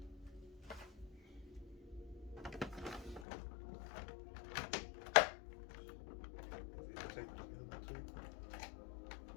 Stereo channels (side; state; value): right; drops out; at 3.2 s